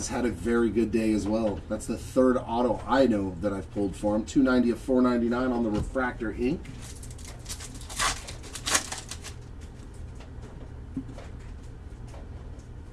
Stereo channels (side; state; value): both; identical; correlation 1.00